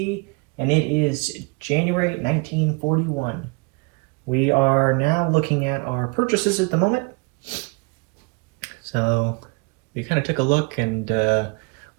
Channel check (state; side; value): quieter; left; 29.8 dB